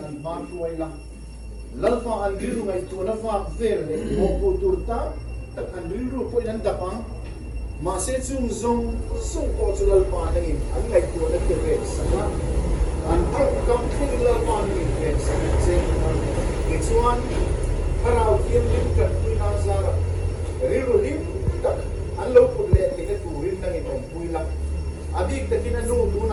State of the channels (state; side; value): identical; both; correlation 1.00